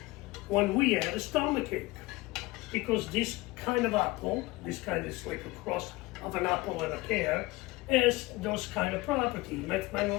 when we had a stomachache, because this kind of apple, this kind is like a cross of an apple and a pear, has those kind of property. They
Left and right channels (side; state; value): right; quieter; 21.1 dB